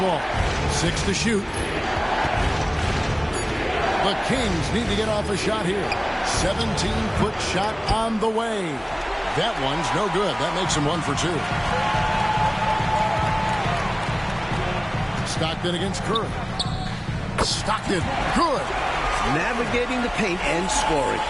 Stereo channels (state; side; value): identical; both; correlation 1.00